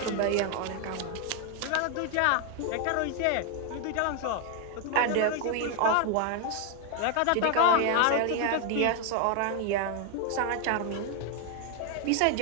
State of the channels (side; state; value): both; different; correlation 0.01